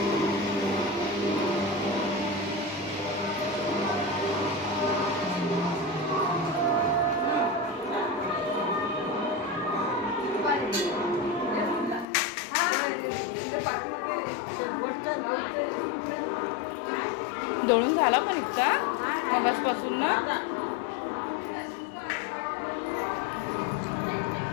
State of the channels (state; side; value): drops out; right; at 12.1 s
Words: दळून झाला पण इतका मगासपासून ना.